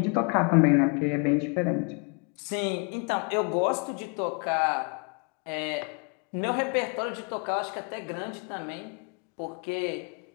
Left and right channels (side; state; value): right; quieter; 35.5 dB